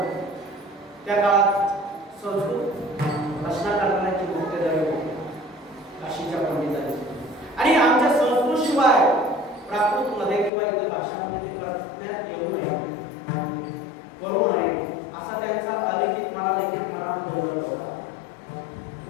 त्या काळात संस्कृत रचना करण्याची मुख्यधारी होती काशीच्या पंडितांनी. आणि आमच्या संस्कृत शिवाय प्राकृत मध्ये किंवा इतर भाषांमध्ये ते करण्यात येऊ नये, करू नये असा त्यांचा अलिखित मना लिखित मना होता.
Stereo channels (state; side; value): drops out; right; at 10.5 s